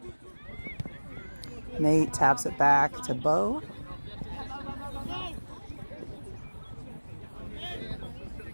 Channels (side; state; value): both; inverted; correlation -1.00